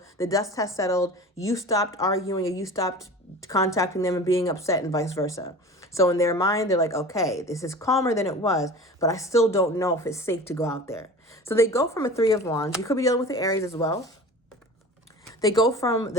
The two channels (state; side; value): normal; both; correlation 0.38